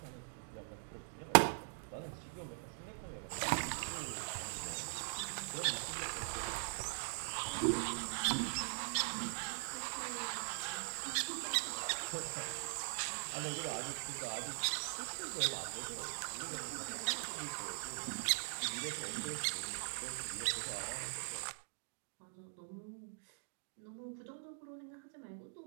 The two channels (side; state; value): left; silent; digital silence